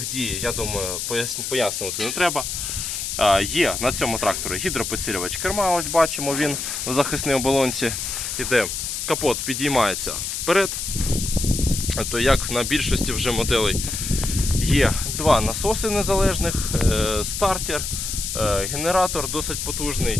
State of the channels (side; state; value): left; noise; hiss, 4 dB below the sound